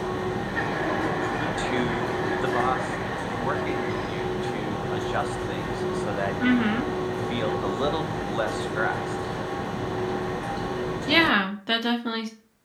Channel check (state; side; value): identical; both; correlation 1.00